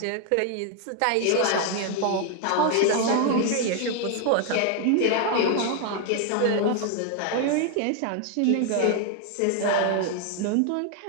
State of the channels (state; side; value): different; both; correlation 0.00